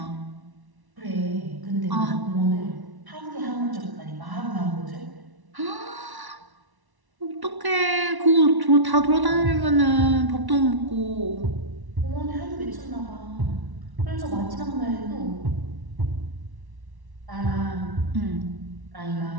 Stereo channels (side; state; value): left; late; 1.1 ms